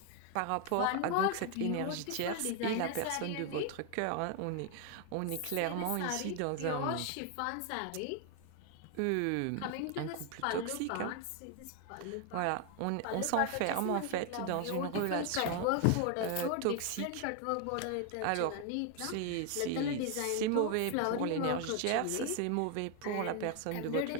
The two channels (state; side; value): different; both; correlation 0.00